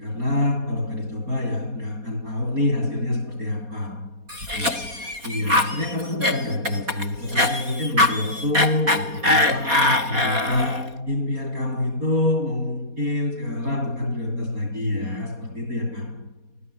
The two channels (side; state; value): left; late; 4.2 ms